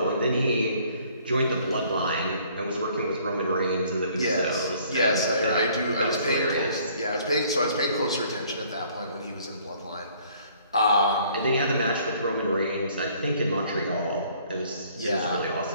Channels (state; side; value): inverted; both; correlation -0.59